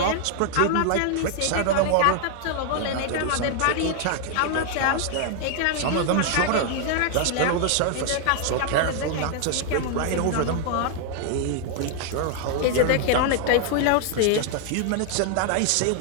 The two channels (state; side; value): different; both; correlation 0.00